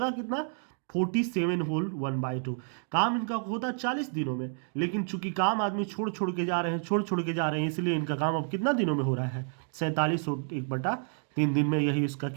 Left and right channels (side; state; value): left; silent; 58 dB below the other